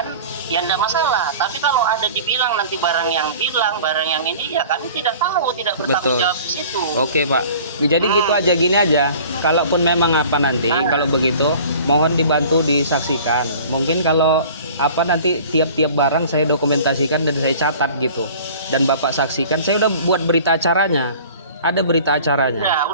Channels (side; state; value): both; inverted; correlation -0.45